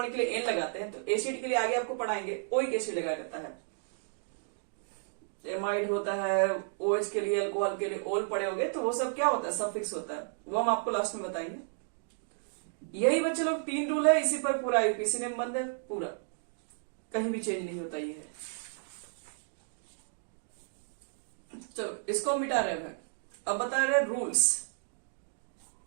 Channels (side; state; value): left; silent; digital silence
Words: के लिए एन लगाते हैं तो एसिड के लिए आगे आपको पढ़ाएंगे ओइक एसिड लगाया जाता है। एमाइड होता है, OH के लिए, अल्कोहल के लिए ओल पड़े होंगे, तो वो सब क्या होता है, सफिक्स होता है, वो हम आपको लास्ट में बताएंगे। यही बच्चे लोग 3 रूल है, इसी पर पूरा यूपीसी में बंद है, पूरा कहीं भी चेंज नहीं होता ये है। चलो इसको मिटा रहे हैं, अब बता रहे rules.